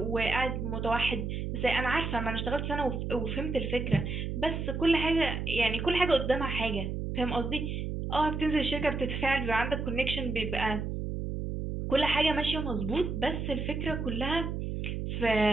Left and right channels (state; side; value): noise; right; hum, 3 dB below the sound